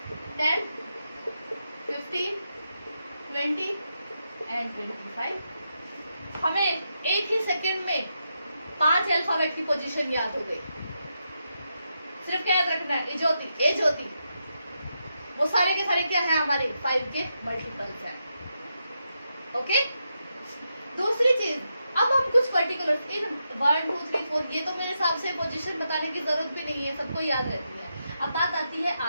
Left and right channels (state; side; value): inverted; both; correlation -0.85